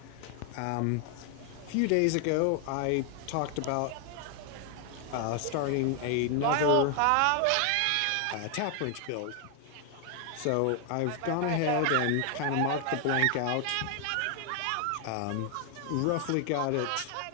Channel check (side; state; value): both; different; correlation 0.00